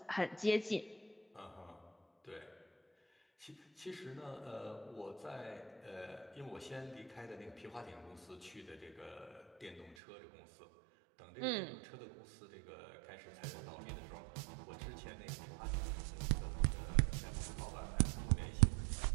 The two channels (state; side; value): drops out; left; at 10.0 s